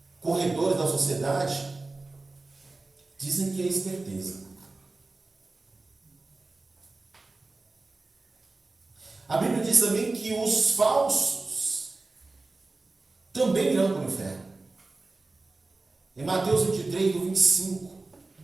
corredores da sociedade, dizem que é esperteza. A Bíblia diz também que os falsos também irão para o inferno. Em Mateus 23, do 25.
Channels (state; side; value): quieter; left; 3.4 dB